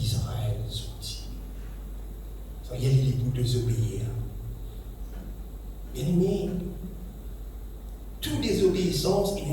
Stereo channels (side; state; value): both; identical; correlation 1.00